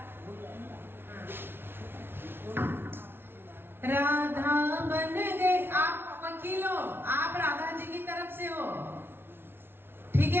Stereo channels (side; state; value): left; late; 0.11 ms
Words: हाँ। राधा बन गए। आप वकील हो, आप राधा जी की तरफ से हो, ठीक